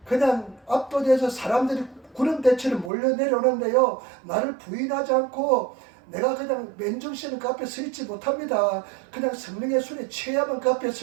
그냥 압도돼서 사람들이 구름대처럼 몰려 내려오는데요, 나를 부인하지 않고 내가 그냥 맨정신은 그 앞에 서 있지 못합니다. 그냥 성령의 손에 취해야만 그 앞에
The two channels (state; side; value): drops out; left; at 2.9 s